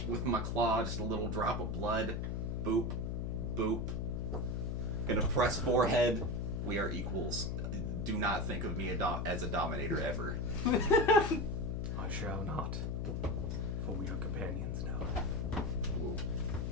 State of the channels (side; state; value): left; noise; hum, 1 dB below the sound